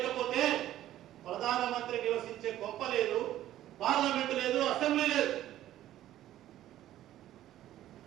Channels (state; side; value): quieter; left; 13.2 dB